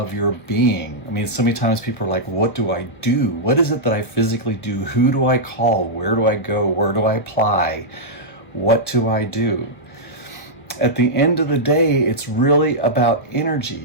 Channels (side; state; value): right; late; 1.0 ms